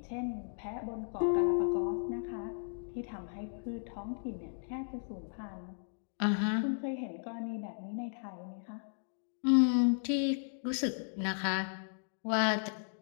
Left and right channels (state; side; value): silent; right; digital silence